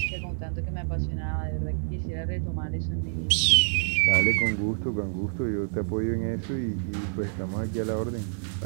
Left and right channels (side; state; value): left; silent; digital silence